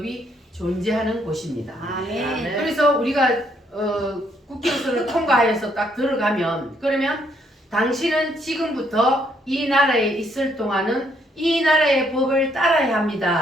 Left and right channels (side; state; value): both; normal; correlation 0.70